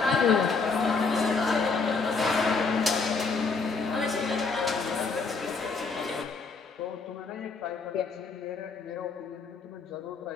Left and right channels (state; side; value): quieter; right; 4.5 dB